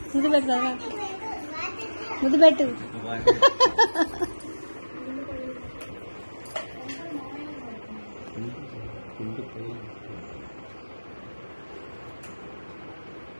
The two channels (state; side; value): inverted; both; correlation -1.00